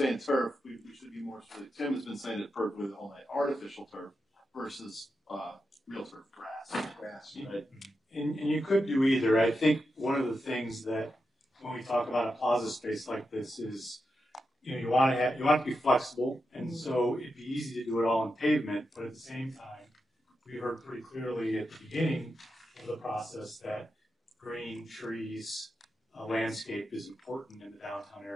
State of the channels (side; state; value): both; normal; correlation 0.88